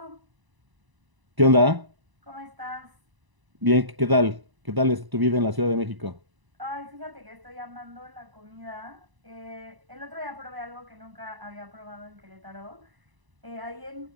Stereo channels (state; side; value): late; left; 1.0 ms